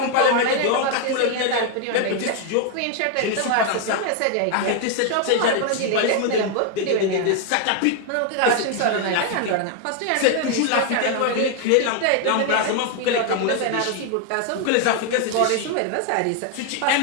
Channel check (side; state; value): both; different; correlation 0.00